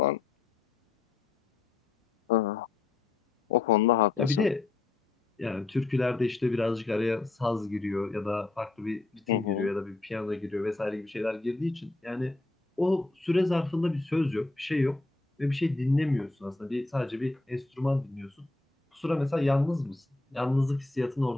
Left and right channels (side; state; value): right; quieter; 3.4 dB